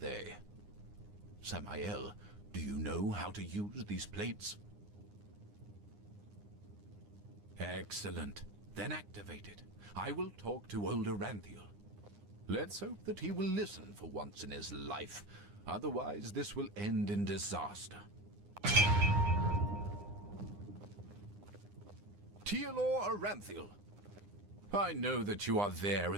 Samael, do you know how to use these plates? Excellent. Then activate it. I will talk to old Aranthiel. Let's hope that he will listen for once in his life. Otherwise, this will end in disaster. Taelor Aranthiel. I know that you are there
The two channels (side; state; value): left; late; 9.8 ms